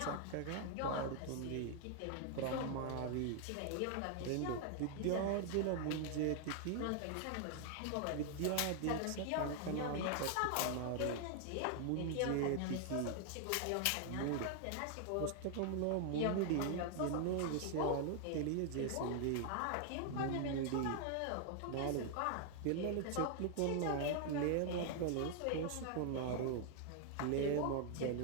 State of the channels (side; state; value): both; different; correlation 0.00